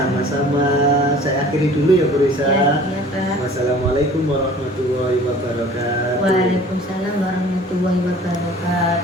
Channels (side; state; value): both; normal; correlation 0.47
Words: Saya akhiri dulu ya Bu Risa. Iya Pak. Wassalamualaikum warahmatullahi wabarakatuh. Waalaikumsalam warahmatullahi